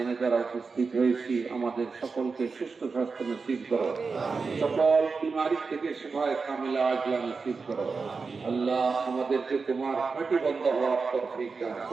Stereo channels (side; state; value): left; quieter; 4.6 dB